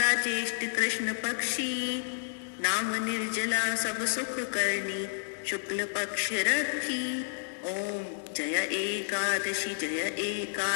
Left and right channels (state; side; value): silent; right; digital silence